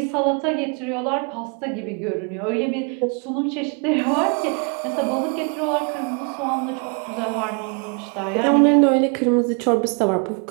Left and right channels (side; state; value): left; quieter; 36.0 dB